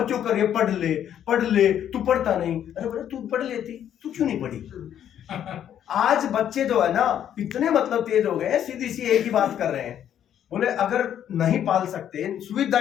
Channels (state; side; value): quieter; right; 10.0 dB